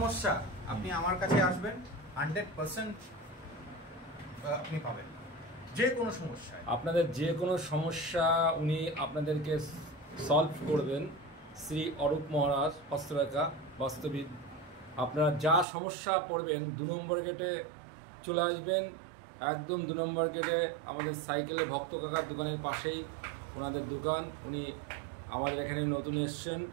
আপনি আমার কাছে আসবেন, 100% আপনি পাবেন। যে কোনো সমস্যা, আপনাদের যে কোনো সমস্যা উনি আপনাদেরকে সলভ করবেন। শ্রী অরূপ মহারাজ হস্তরেখা বাস্তবিক। আপনারা যা সমস্যা পড়বেন 2 নম্বর গেটে চলে আসবেন। একদম 2 নম্বর গেটে আমাদের সাইকেলে ভক্ত কাকার দোকানের পাশেই ওনাদের দোকান। উনি আমাদের এখানে নতুন এসছেন।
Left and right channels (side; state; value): left; drops out; at 15.7 s